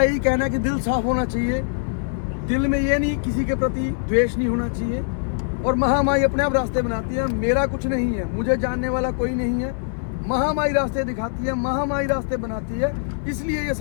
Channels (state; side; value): silent; right; 64 dB below the other